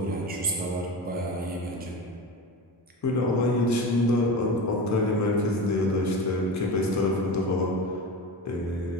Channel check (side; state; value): both; normal; correlation 0.27